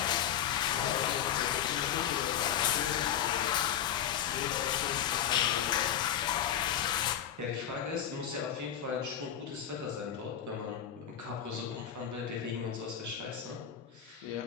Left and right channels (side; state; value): right; quieter; 9.7 dB